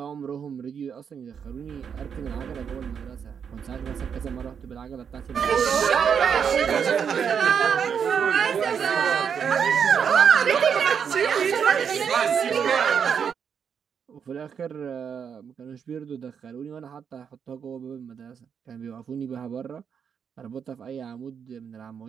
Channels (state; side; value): quieter; left; 7.2 dB